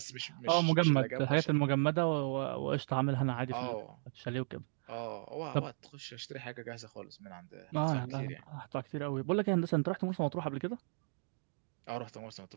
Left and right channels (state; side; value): silent; left; digital silence